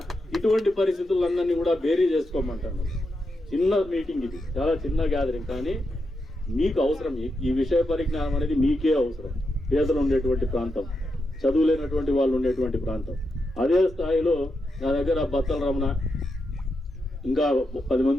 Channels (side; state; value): both; normal; correlation 0.86